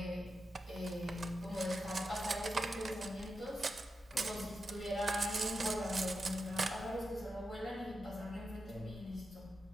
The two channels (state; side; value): normal; both; correlation 0.88